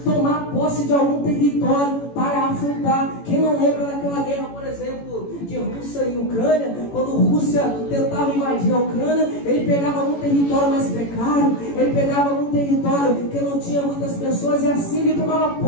tomar posse de algum território para afrontar. Quem não lembra daquela guerra, por exemplo, de Rússia e Ucrânia? Quando a Rússia tentava invadir a Ucrânia, ele pegava algum território mais precário, ele pegava algum território que não tinha muitas pessoas, e assim ele tomava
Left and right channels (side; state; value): right; late; 18 ms